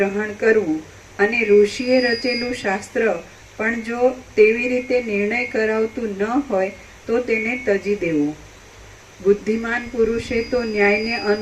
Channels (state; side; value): identical; both; correlation 1.00